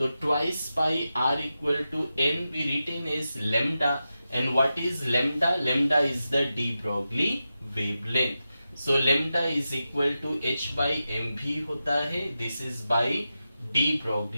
twice pi r equal to n we written as lambda. And what is lambda? Lambda is the de Broglie wavelength. So lambda is equal to h by mv होता है. This is by de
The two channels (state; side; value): inverted; both; correlation -0.91